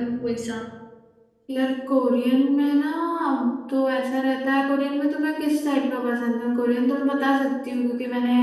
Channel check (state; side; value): identical; both; correlation 1.00